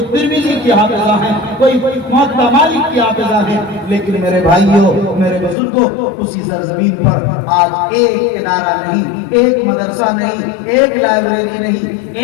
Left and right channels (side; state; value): right; drops out; at 5.6 s